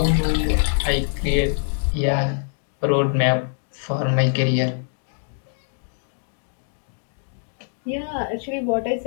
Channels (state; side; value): silent; right; digital silence